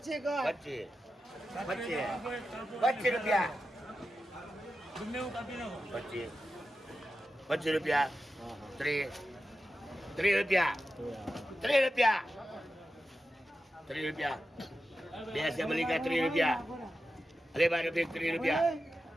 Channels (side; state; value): both; normal; correlation 0.91